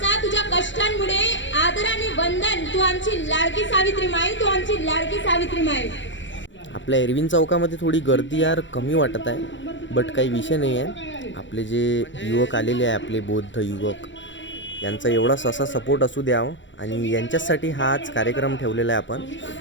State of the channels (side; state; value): right; late; 0.54 ms